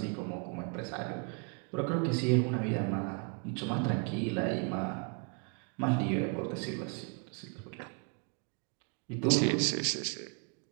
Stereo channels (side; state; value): left; quieter; 36.3 dB